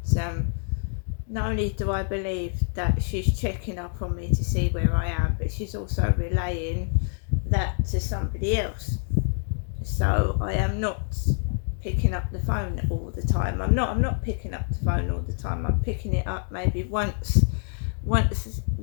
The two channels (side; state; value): right; silent; 61 dB below the other